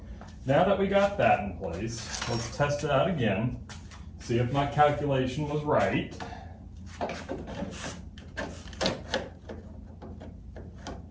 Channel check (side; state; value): both; identical; correlation 1.00